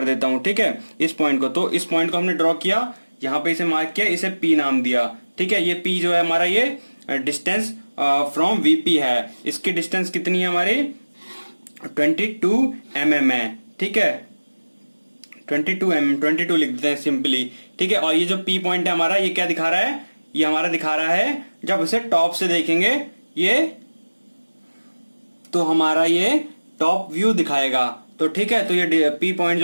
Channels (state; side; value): inverted; both; correlation -1.00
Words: देता हूं, ठीक है, इस पॉइंट को। तो इस पॉइंट को हमने ड्रॉ किया, यहाँ पे इसे मार्क किया, इसे P नाम दिया, ठीक है। ये P जो है हमारा, ये डिस्टेंस फ्रॉम VP है। इसकी डिस्टेंस कितनी है हमारी, 22 mm है, ठीक है। 22 mm, 22 लिख देते हैं सिंपली, ठीक है। और ये जो P पॉइंट है हमारा, ये क्या दिखा रहा है, ये हमारा दिखा रहा है, जब इसे टॉप से देखेंगे ये, तो हमारा ये टॉप व्यू दिखाएगा, तो ठीक है। तो ये P पॉइंट